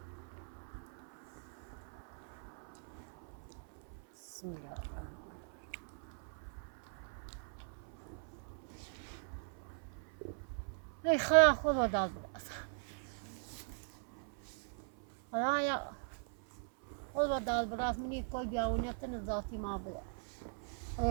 Сміла. Ой, холода була. حالا یا خدا دال برات منی کوئی بیاونه تن ذاتی ما بلا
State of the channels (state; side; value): silent; left; 51 dB below the other